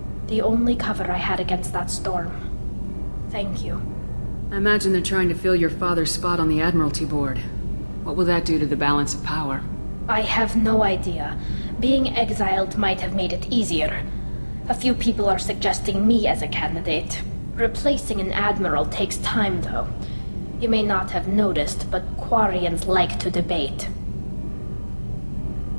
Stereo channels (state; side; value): inverted; both; correlation -1.00